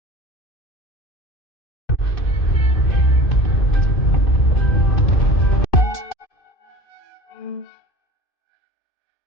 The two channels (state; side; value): late; right; 2.6 ms